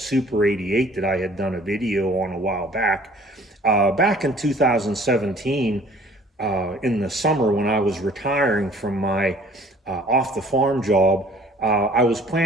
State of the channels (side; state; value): both; normal; correlation 0.53